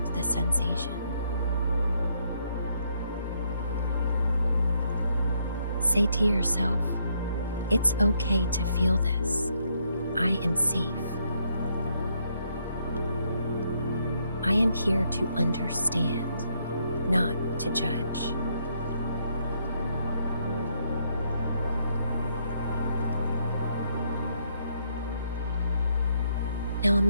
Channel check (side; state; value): both; inverted; correlation -0.74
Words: the sensation. Say to yourself, "It's okay to feel this. I am safe. I am here to understand, not to judge." Now